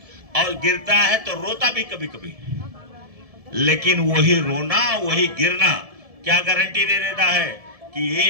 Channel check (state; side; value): late; left; 1.7 ms